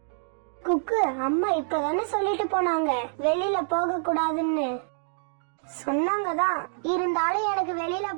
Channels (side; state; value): left; silent; digital silence